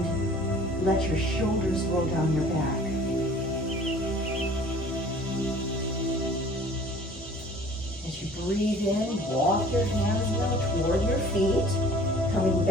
let your shoulders roll down your back. As you breathe in, walk your hands now toward your feet, coming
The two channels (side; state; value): both; normal; correlation 0.49